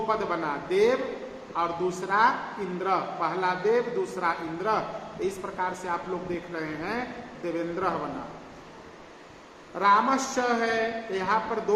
पद बना, देव और दूसरा इंद्र, पहला देव दूसरा इंद्र। इस प्रकार से आप लोग देख रहे हैं देवेंद्र बना। रामश्च है, यहाँ पर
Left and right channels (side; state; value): both; identical; correlation 1.00